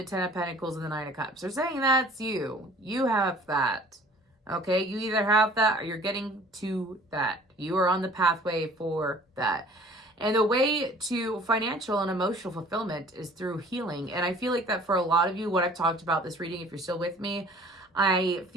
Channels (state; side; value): normal; both; correlation 0.50